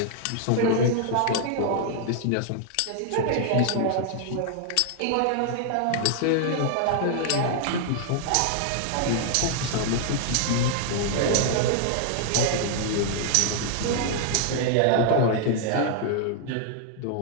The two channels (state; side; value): different; both; correlation 0.00